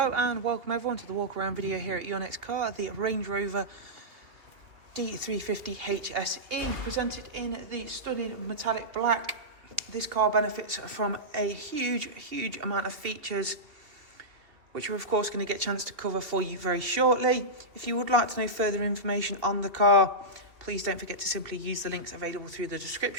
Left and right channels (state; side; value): late; left; 3.0 ms